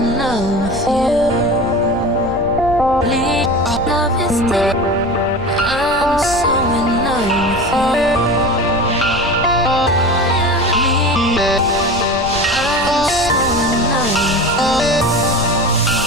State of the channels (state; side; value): noise; left; rumble, 12 dB below the sound